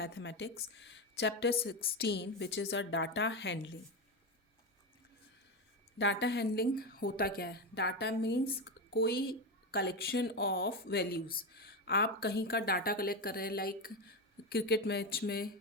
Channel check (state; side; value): normal; both; correlation 0.14